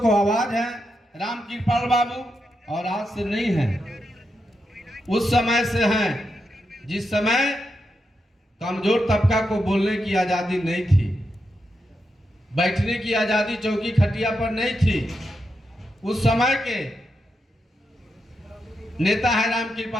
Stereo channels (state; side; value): normal; both; correlation 0.85